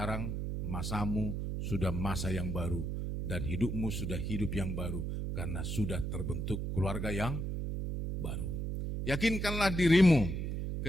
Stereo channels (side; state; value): right; noise; hum, 3 dB below the sound